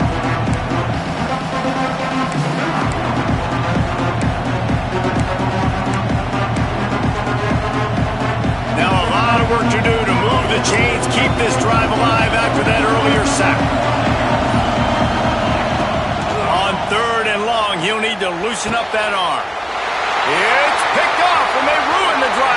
Work to do to move the chains, keep this drive alive after that earlier sack. On third and long, he'll need to loosen up that arm. It's picked off, and they ruin the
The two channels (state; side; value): identical; both; correlation 1.00